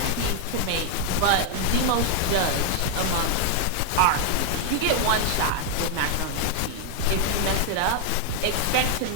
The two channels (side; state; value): both; different; correlation 0.00